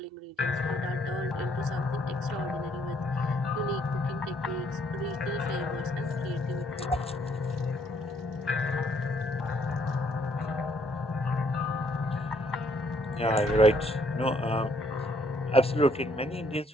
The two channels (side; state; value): both; normal; correlation 0.68